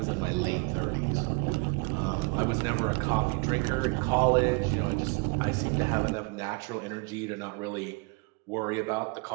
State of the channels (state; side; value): quieter; left; 29.3 dB